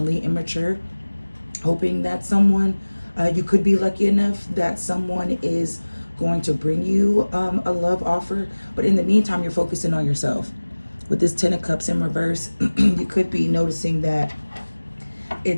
immature, hoping that someone, you could be lucky enough that someone is going to bring you a love offer, but in the meantime, you're focusing on yourself. With this 10 of Cups in reverse, you could be noticing that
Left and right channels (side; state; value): both; inverted; correlation -1.00